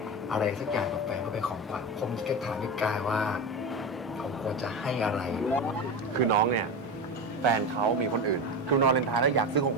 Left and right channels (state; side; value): normal; both; correlation 0.21